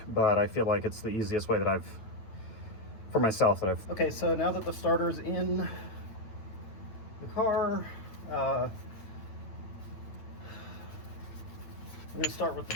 but I feel like it's the easiest way that for myself that I've. Okay, so now that the starter's in the car, I'm going to start with the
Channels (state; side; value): late; right; 9.1 ms